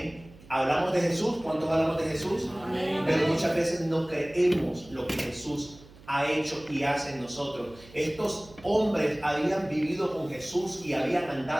Hablamos de Jesús. ¿Cuántos hablamos de Jesús? Amén. Pero muchas veces no creemos lo que Jesús ha hecho y hace en nosotros. Estos hombres habían vivido con Jesús y habían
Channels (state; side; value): noise; right; hum, 22 dB below the sound